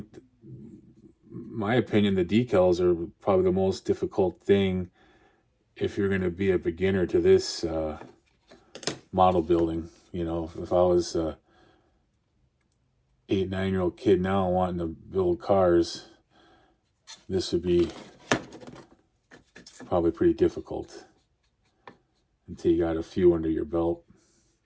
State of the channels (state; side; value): identical; both; correlation 1.00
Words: my opinion, the decals are probably the most difficult thing if you're going to be a beginner to this model building. You know, if I was a 8, 9-year-old kid now wanting to build cars, this would be probably pretty difficult until you got a few under your belt.